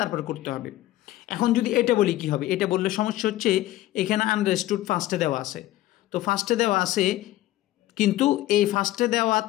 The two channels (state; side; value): quieter; right; 15.5 dB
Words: তারপরে করতে হবে। এখন যদি এটা বলি কি হবে, এটা বললে সমস্যা হচ্ছে এখানে আন্ডারস্টুড ফার্স্টে দেওয়া আছে, তো ফার্স্টে দেওয়া আছে কিন্তু এই ফার্স্টে দেওয়া